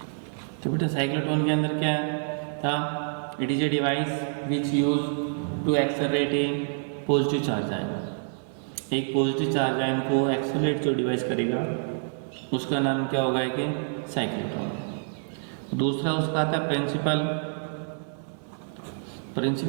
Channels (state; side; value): silent; left; 60 dB below the other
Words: तो बेटा साइक्लोट्रॉन के अंदर क्या था, it is a device which use to accelerate a positive charge ion. एक पॉजिटिव चार्ज आयन को एक्सेलरेट जो डिवाइस करेगा उसका नाम क्या होगा कि साइक्लोट्रॉन। दूसरा उसका आता प्रिंसिपल।